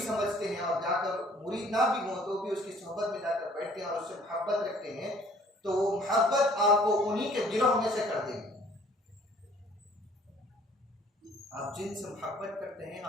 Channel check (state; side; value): normal; both; correlation 0.56